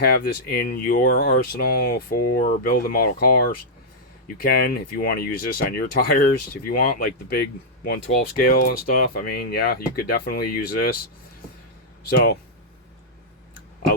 this in your arsenal for building model cars. You can if you want to use this on your tires if you want, like the big 112 scale and stuff. I mean, yeah, you could definitely use this. So I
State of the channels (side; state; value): both; normal; correlation -0.08